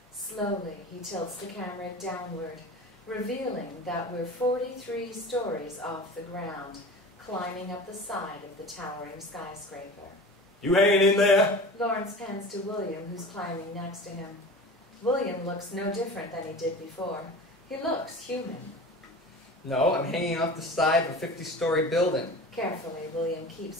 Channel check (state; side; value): normal; both; correlation 0.36